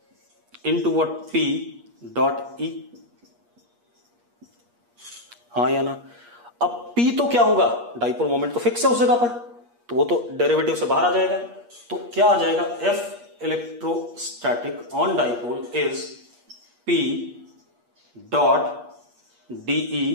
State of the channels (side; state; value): left; late; 8.4 ms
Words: into what p dot E, हाँ या ना। अब p तो क्या होगा, डाइपोल मोमेंट तो फिक्स है उस जगह पर, तो वो तो डेरिवेटिव से बाहर आ जाएगा। तो क्या आ जाएगा, F electrostatic on dipole is p dot dE